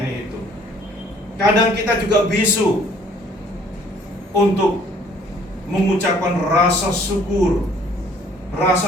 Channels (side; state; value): both; normal; correlation 0.58